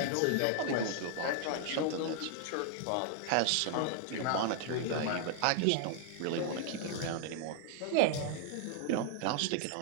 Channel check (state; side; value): different; both; correlation 0.00